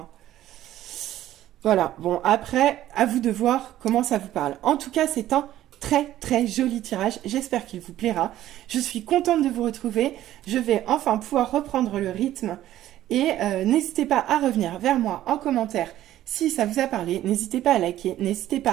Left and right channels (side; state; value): left; quieter; 13.3 dB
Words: Voilà, bon, après, à vous de voir comment ça vous parle. En tout cas, c'est un très très joli tirage, j'espère qu'il vous plaira. Je suis contente de vous retrouver, je vais enfin pouvoir reprendre le rythme. Et n'hésitez pas à revenir vers moi en commentaire si ça vous a parlé. N'hésitez pas à liker, n'hésitez